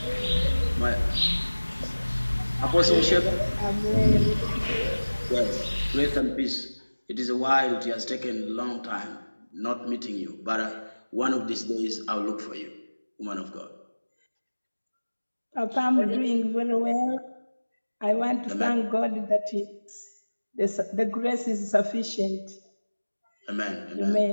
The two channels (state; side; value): inverted; both; correlation -1.00